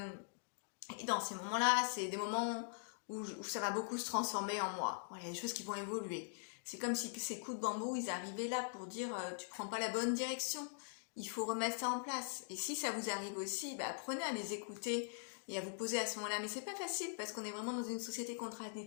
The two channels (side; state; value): right; silent; digital silence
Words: et dans ces moments-là, c'est des moments où ça va beaucoup se transformer en moi. Voilà, il y a des choses qui vont évoluer. C'est comme si ces coups de bambou, ils arrivaient là pour dire tu prends pas la bonne direction. Il faut remettre ça en place. Et si ça vous arrive aussi, bah, apprenez à les écouter et à vous poser à ce moment-là. Mais c'est pas facile parce qu'on est vraiment dans une société